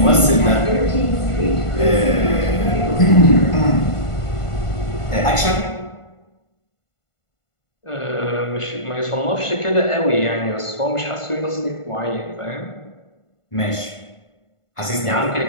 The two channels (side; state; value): right; late; 1.5 ms